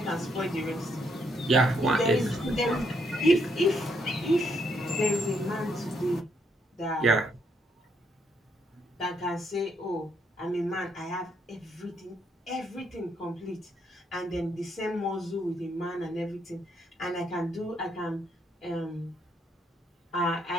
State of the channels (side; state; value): both; normal; correlation 0.75